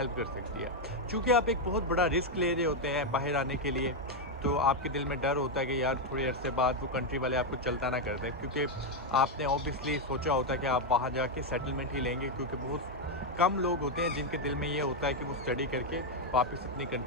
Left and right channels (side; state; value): both; normal; correlation 0.03